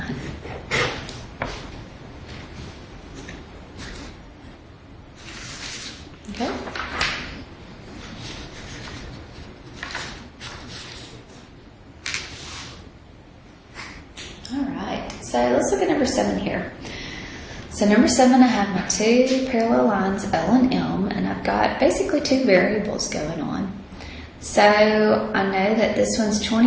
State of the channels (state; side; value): identical; both; correlation 1.00